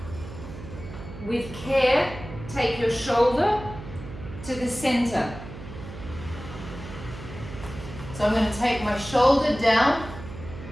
With care, take your shoulder to the center. So I'm going to take my shoulder down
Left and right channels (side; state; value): right; noise; hum, 12 dB below the sound